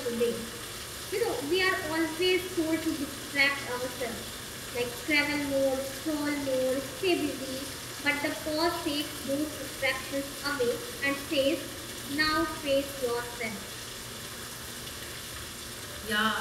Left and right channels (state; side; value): identical; both; correlation 1.00